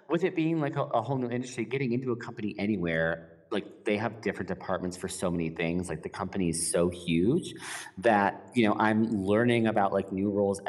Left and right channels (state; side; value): identical; both; correlation 1.00